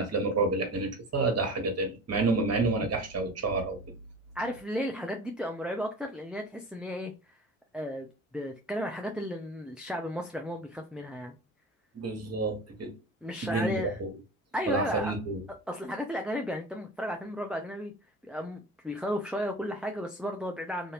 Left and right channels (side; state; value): both; normal; correlation 0.36